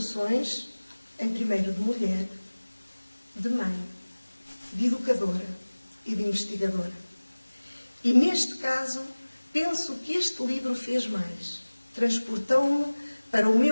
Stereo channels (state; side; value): inverted; both; correlation -1.00